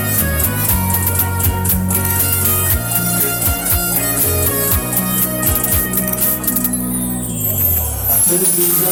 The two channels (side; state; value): both; identical; correlation 1.00